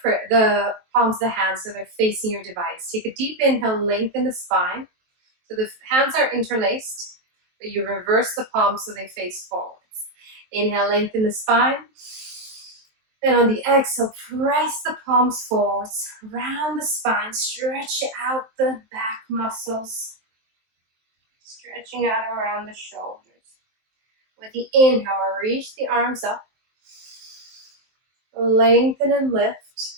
palms of the hands so they're facing your device. Take a deep inhale. Lengthen the spine. So the hands are interlaced, but you reverse the palms so they face forwards. Inhale, lengthen the spine. And on the exhale, press the palms forwards, round the spine, stretch out the back muscles, stretching out around the shoulders. With the inhale, reach the arms up, lengthen and lift.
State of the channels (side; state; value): left; late; 23 ms